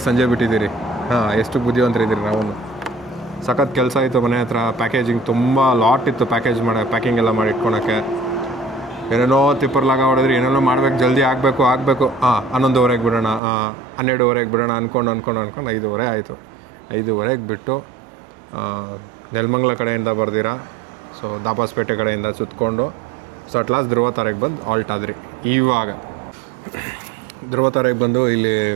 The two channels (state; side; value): drops out; left; at 13.4 s